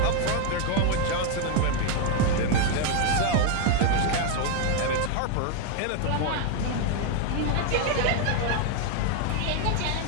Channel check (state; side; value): different; both; correlation 0.01